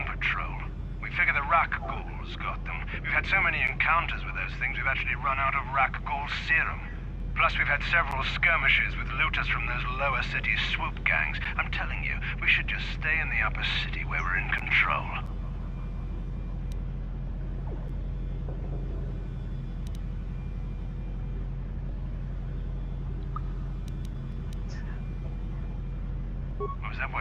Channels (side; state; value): both; identical; correlation 1.00